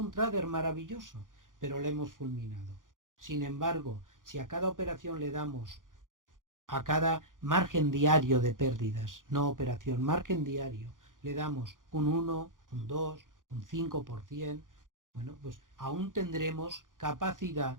trader maravilloso, pero le hemos fulminado. Sin embargo, si a cada operación le damos, a cada margen diario de pérdidas, no operación, margen diario, le damos un 1, un 2, un 5%, bueno, pues aún tendremos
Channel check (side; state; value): left; late; 0.89 ms